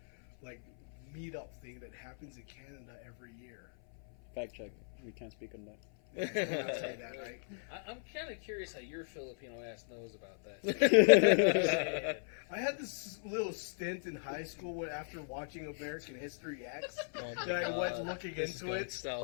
like meetup thing that happens in Canada every year. Fact check. We can't speak on that. I'll say that, right? I'm kind of curious how your Filipino ass knows about that. I had this little stint in high school when, after watching American History X, Oh my that I went God. looking This is into going it.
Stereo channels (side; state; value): right; silent; 53 dB below the other